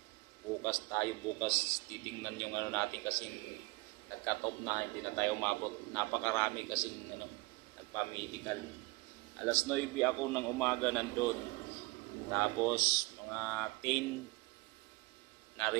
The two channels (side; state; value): left; quieter; 23.8 dB